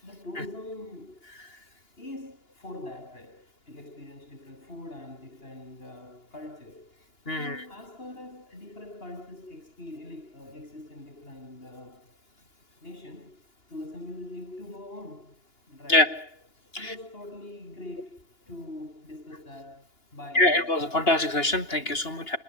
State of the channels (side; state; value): right; late; 2.9 ms